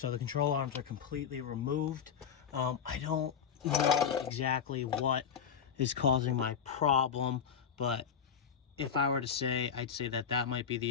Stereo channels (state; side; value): quieter; right; 7.5 dB